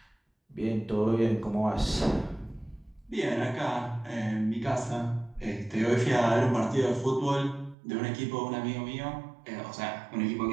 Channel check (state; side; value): drops out; left; at 7.8 s